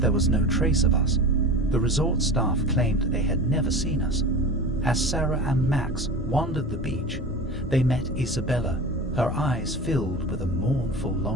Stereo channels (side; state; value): both; normal; correlation 0.32